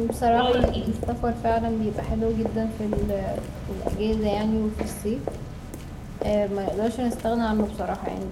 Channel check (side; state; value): both; identical; correlation 1.00